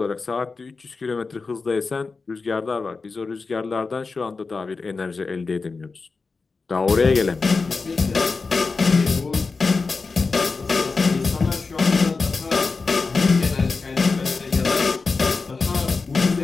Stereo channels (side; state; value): right; quieter; 4.3 dB